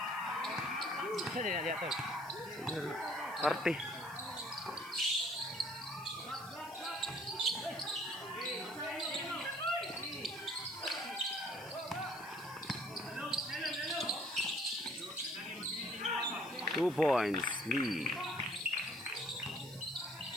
Sa din dia to. Party. Two points lead.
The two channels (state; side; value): noise; left; hiss, 19 dB below the sound